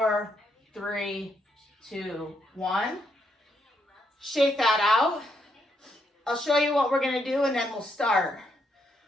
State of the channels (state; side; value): normal; both; correlation 0.76